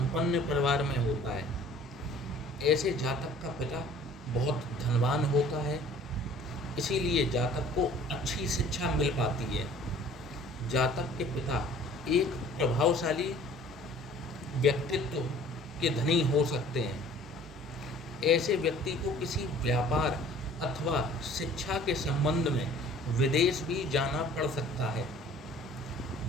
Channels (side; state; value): both; normal; correlation 0.50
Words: परिवार में होता है। ऐसे जातक का पिता बहुत धनवान होता है, इसीलिए जातक को अच्छी शिक्षा मिल पाती है। जातक के पिता एक प्रभावशाली व्यक्तित्व के धनी हो सकते हैं। ऐसे व्यक्ति को किसी व्यापार अथवा शिक्षा के संबंध में विदेश भी जाना पड़ सकता है।